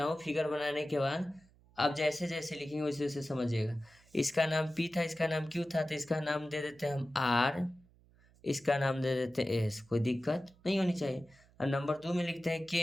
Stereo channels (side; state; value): right; noise; hum, 29 dB below the sound